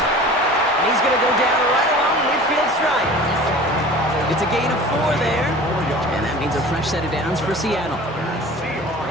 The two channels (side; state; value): both; normal; correlation 0.41